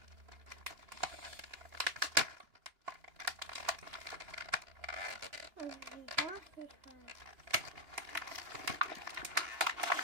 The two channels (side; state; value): left; late; 2.8 ms